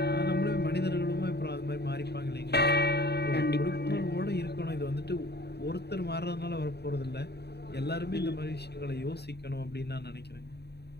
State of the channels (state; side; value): late; right; 0.48 ms